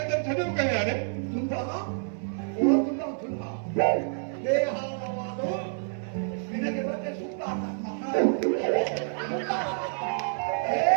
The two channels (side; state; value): left; silent; digital silence